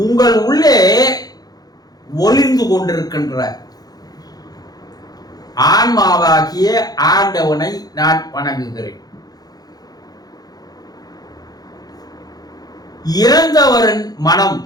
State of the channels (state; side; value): late; right; 0.19 ms